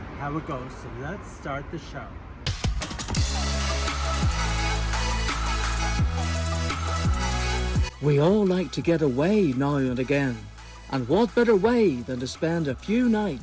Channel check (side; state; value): both; identical; correlation 1.00